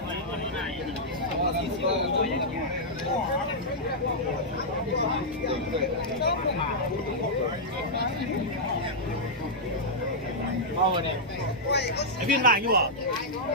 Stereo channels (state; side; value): normal; both; correlation -0.08